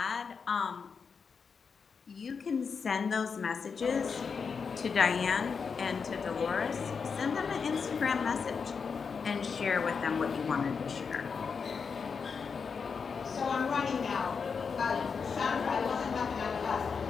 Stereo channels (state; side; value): quieter; right; 5.7 dB